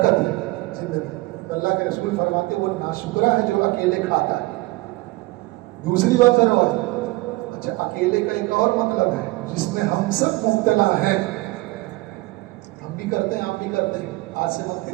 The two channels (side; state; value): left; quieter; 21.4 dB